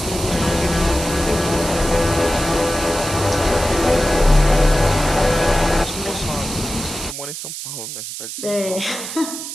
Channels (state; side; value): noise; right; hiss, 8 dB below the sound